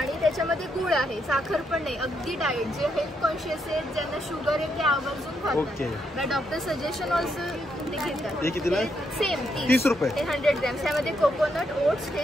त्याच्यामध्ये गुळ आहे, साखर पण नाही, अगदी डाएट. जे हेल्थ कॉन्शियस आहेत, ज्यांना शुगर आहे ते आवर्जून खातात. ओके. डॉक्टर सजेशन ऑल्सो ते घेतात. हे कितीला आहे? सेम 30 रुपये. हे 100 ग्रॅम. त्यामध्ये कोकोनट ओट्स, हे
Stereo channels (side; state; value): both; normal; correlation 0.78